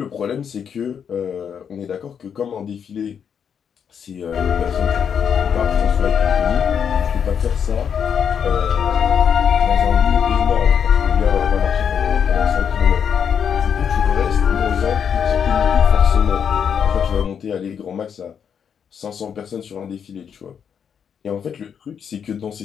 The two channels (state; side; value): quieter; right; 7.6 dB